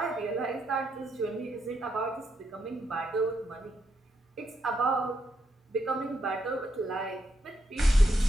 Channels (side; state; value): both; normal; correlation 0.80